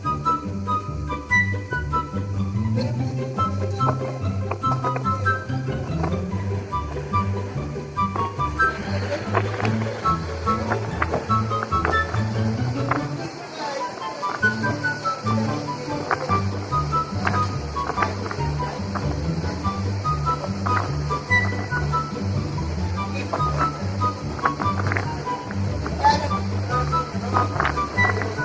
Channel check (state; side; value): identical; both; correlation 1.00